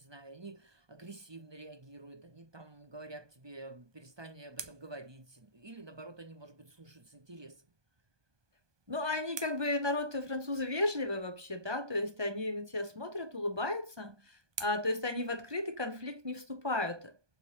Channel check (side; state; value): left; late; 1.2 ms